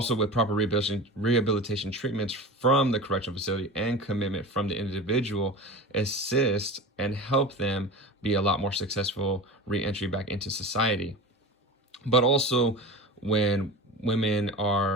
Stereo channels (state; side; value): normal; both; correlation 0.31